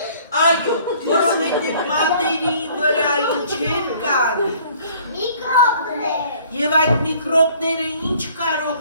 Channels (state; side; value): inverted; both; correlation -0.55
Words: Այո, որովհետև մատերի վրա ինչեր կան։ Միկրոբներ։ Եվ այդ միկրոբները ինչ